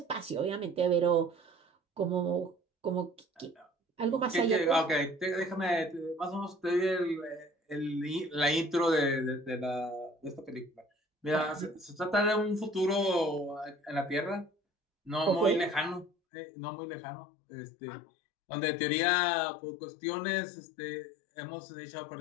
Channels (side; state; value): right; drops out; at 16.1 s